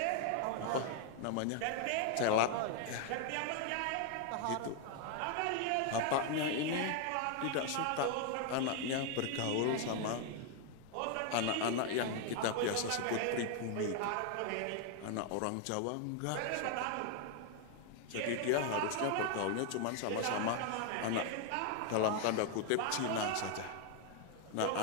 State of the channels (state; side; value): different; both; correlation 0.00